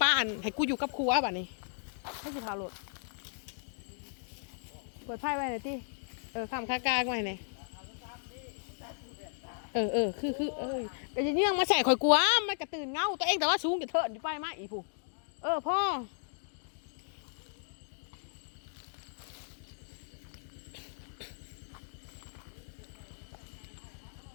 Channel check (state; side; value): silent; right; digital silence